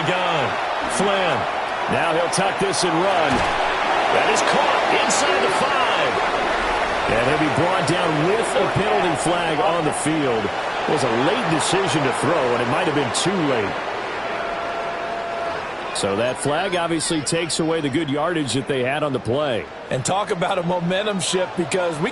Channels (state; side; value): identical; both; correlation 1.00